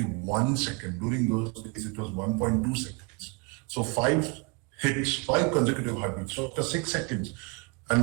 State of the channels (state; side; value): quieter; left; 29.3 dB